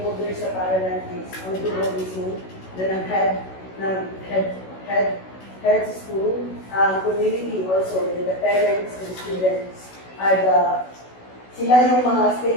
sa paaralan is ang guro mismo na head sa school, community also, the parents and students are sila yung mga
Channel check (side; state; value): right; late; 16 ms